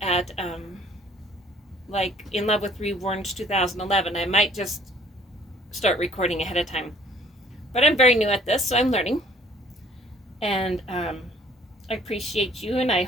at like In Love with Reborns 2011. I might just start recording ahead of time. But I'm very new at this, so I'm learning. And I appreciate you, and I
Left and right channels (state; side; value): normal; both; correlation 0.57